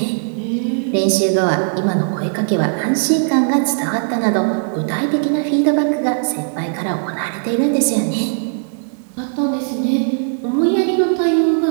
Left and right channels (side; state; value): left; silent; digital silence